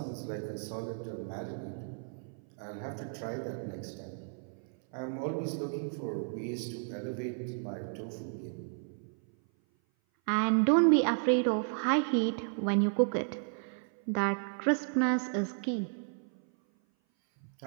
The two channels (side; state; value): left; silent; 56 dB below the other